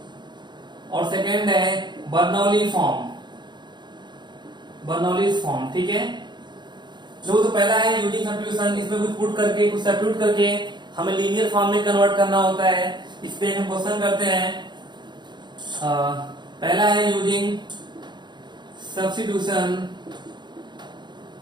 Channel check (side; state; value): left; late; 0.22 ms